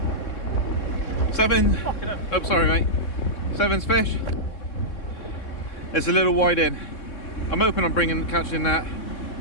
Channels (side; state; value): right; late; 3.6 ms